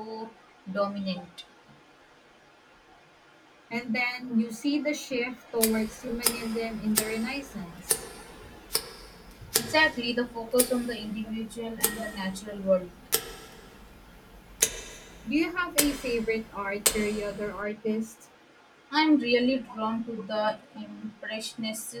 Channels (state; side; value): identical; both; correlation 1.00